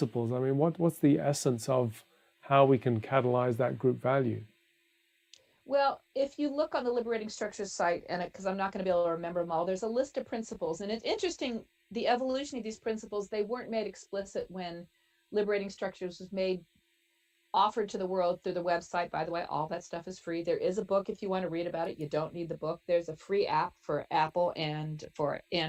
I mean, what's the essence of how we can catalyze that group value? Well, if you look on the Liberating Structures site, and because I'm not going to be able to remember them all, there's a list of principles. And it's interesting, the evolution of these principles, they weren't made explicit when Liberating Structures was offered to the world through the website. By the way, all that stuff is free. There is a book if you want to read about it. You don't need the book. There's a free app for Apple and for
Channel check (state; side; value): identical; both; correlation 1.00